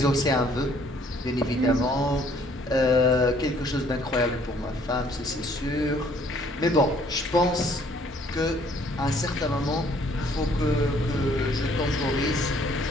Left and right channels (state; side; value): normal; both; correlation 0.61